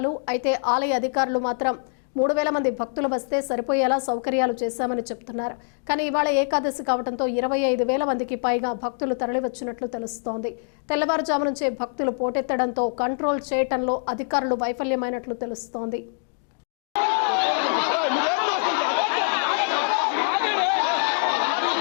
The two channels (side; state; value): right; silent; digital silence